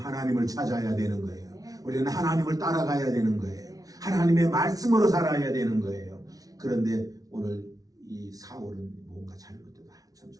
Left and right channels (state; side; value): late; left; 0.18 ms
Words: 찾아야 되는 거예요. 우리는 하나님을 따라가야 되는 거예요. 하나님의 말씀으로 살아야 되는 거예요. 그런데 오늘 이 사울은 뭔가 잘못됐다. 한참